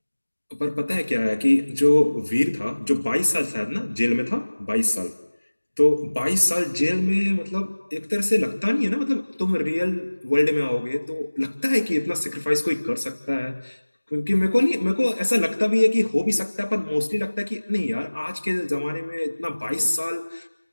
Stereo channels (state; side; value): inverted; both; correlation -1.00